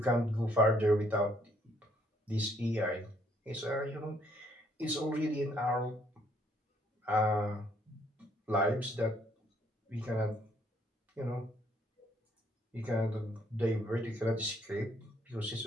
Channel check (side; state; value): both; normal; correlation 0.67